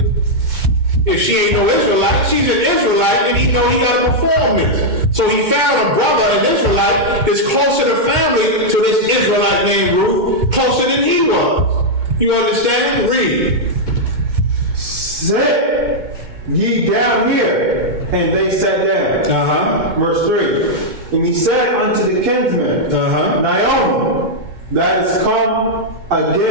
If she ain't no Israelite, she's an Israelite, and he know he got to perform this. So he found a brother, an Israelite, that's closer to family to this Israelite named Ruth, closer than he was. You understand? Read. Sit ye down here, and they sat down. Verse 3. And he said unto the kinsman, Naomi, that is come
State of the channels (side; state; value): left; late; 2.2 ms